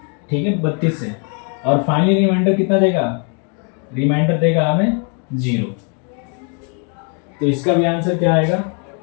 ठीक है, 32 से। और फाइनली रिमाइंडर कितना देगा, रिमाइंडर देगा हमें 0। तो इसका भी आंसर क्या आएगा,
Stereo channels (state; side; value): quieter; right; 39.1 dB